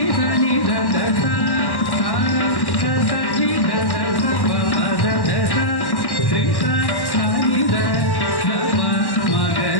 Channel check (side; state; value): right; late; 1.1 ms